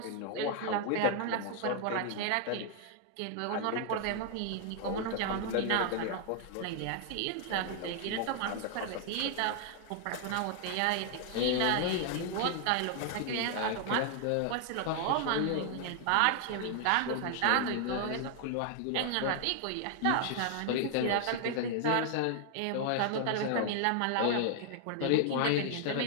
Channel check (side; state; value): both; different; correlation 0.00